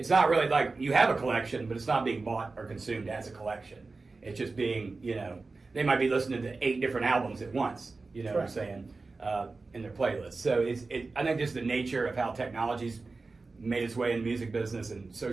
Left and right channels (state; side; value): quieter; left; 3.8 dB